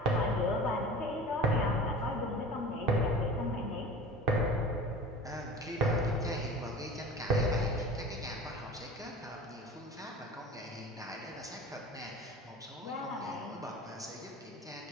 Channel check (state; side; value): normal; both; correlation 0.38